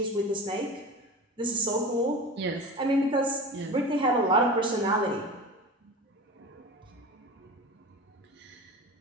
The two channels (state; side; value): normal; both; correlation 0.32